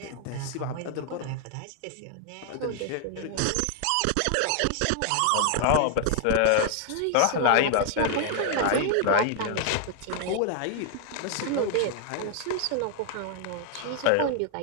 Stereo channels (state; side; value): different; both; correlation 0.00